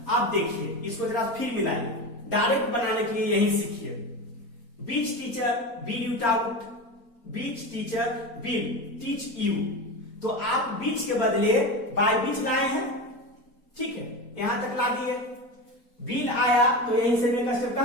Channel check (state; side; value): late; right; 4.2 ms